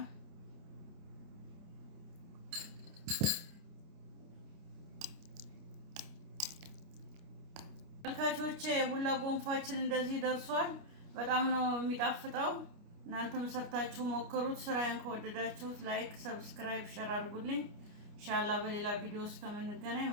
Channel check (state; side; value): late; left; 29 ms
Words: ተመልካቾቼ የቡላ ጎንፋችን እንደዚህ ደርሷል። በጣም ነው የሚጣፍጠው። እናንተም ሰርታችሁ ሞክሩት። ስራዬን ከወደዳችሁት ላይክ፣ ሰብስክራይብ፣ ሼር አድርጉልኝ። ኢንሻአላህ በሌላ ቪዲዮ እስከምንገናኝ